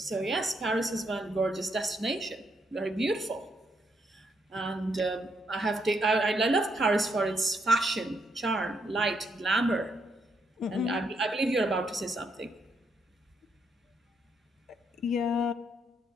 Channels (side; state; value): both; normal; correlation 0.76